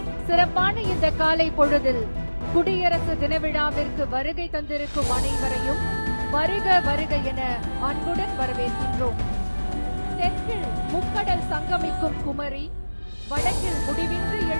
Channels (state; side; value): inverted; both; correlation -1.00